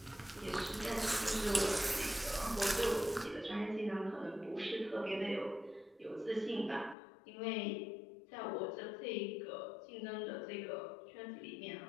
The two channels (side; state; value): right; drops out; at 7.0 s